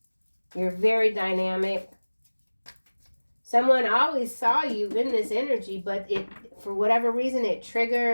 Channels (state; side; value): inverted; both; correlation -1.00